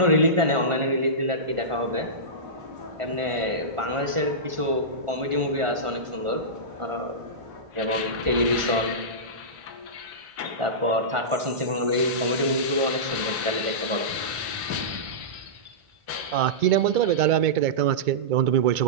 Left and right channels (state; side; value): late; left; 1.5 ms